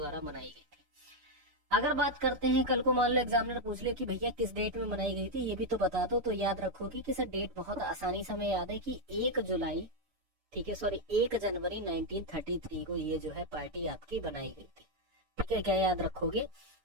बनाई गई थी। अगर बात करते हैं, कल को मान लो एग्जामिनर पूछ ले कि भैया किस डेट में बनाई गई थी, ये भी तो बता दो, तो याद रखोगे कि सर डेट बहुत आसानी से हमें याद है कि 1 जुलाई, ठीक है, सॉरी 1 जनवरी 1933 को ये जो है पार्टी आपकी बनाई गई थी, ठीक है। क्या याद रखोगे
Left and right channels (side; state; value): left; late; 6.8 ms